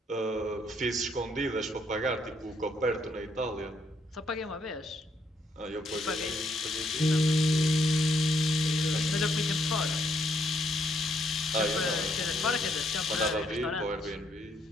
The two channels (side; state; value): both; normal; correlation 0.72